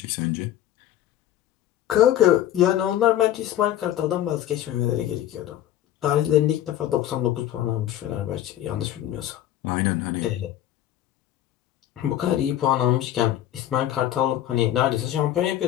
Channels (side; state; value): right; quieter; 12.4 dB